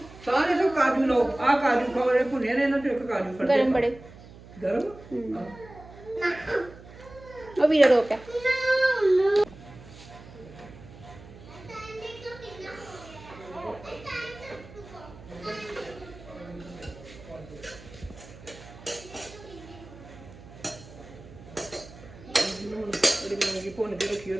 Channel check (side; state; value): right; noise; hum, 19 dB below the sound